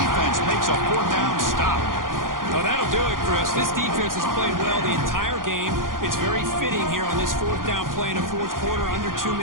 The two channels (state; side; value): late; left; 0.90 ms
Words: makes a fourth down stop. Oh, that'll do it, Chris. This defense has played well the entire game. It's very fitting here on this fourth down play in the fourth quarter. Under 2